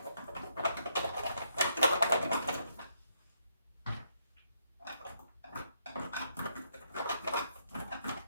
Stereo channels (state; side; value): inverted; both; correlation -0.75